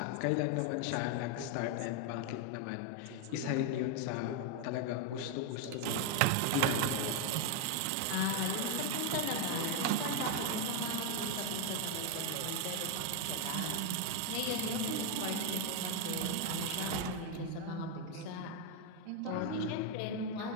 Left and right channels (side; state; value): both; different; correlation 0.01